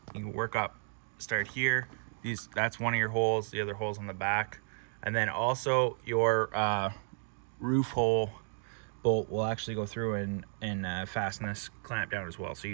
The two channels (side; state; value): left; silent; digital silence